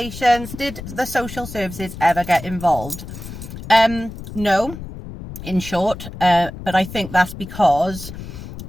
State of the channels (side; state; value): left; noise; rumble, 11 dB below the sound